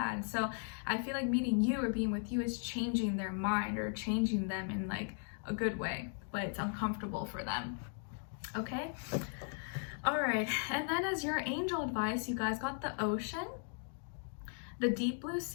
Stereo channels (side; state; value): right; silent; 53 dB below the other